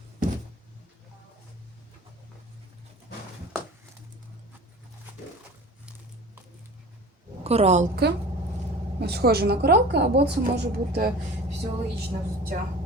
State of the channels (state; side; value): normal; both; correlation 0.39